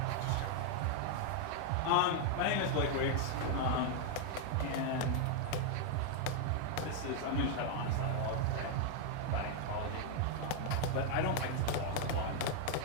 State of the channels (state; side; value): different; both; correlation 0.00